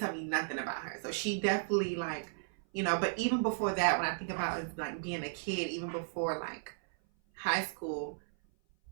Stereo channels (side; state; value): left; silent; 55 dB below the other